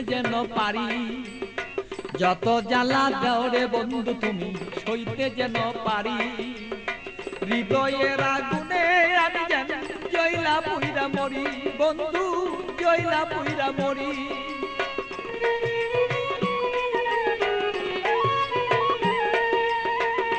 যেন পারি যত জ্বালা দেওরে বন্ধু তুমি সইতে যেন পারি হৃদয়ের আগুনে আমি যেন জয়লা পুইরা মরি বন্ধু জয়লা পুইরা মরি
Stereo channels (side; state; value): both; identical; correlation 1.00